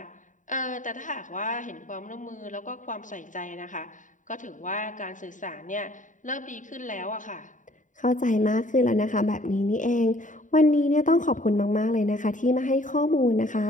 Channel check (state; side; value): late; right; 0.37 ms